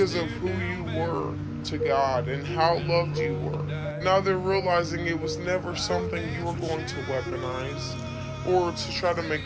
of who you were to God and how loved you were. Now they're realizing it was never something you were going to weaponize or to try to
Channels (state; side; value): identical; both; correlation 1.00